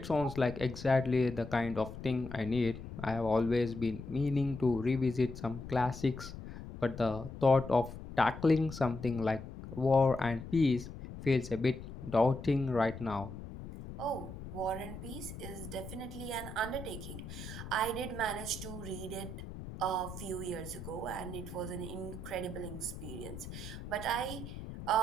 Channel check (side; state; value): left; noise; rumble, 11 dB below the sound